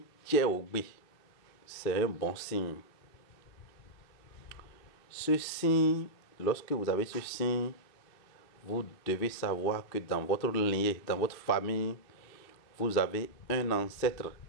Tcheoubé, c'est un bon signe. Ce signe, lorsque vous avez ce signe, vous devez savoir que dans votre lignée, dans votre famille, vous avez un ancêtre,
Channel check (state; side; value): late; right; 2.7 ms